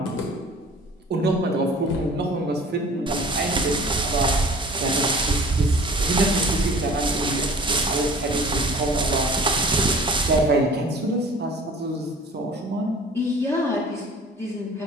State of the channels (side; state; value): both; normal; correlation 0.45